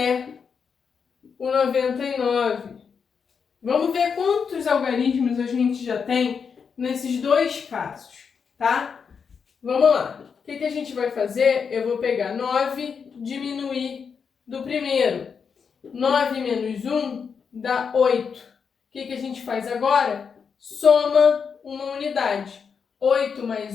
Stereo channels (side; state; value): right; quieter; 6.2 dB